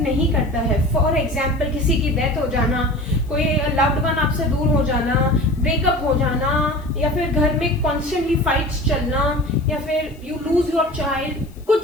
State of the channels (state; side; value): noise; left; hiss, 29 dB below the sound